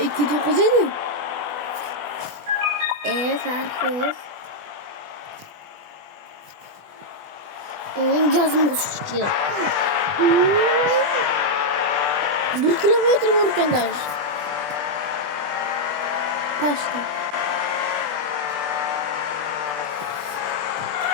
edi. Fark yo'q. Onun gazını basıyor. 1 kilometre var ekan Taştı.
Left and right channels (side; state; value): left; late; 20 ms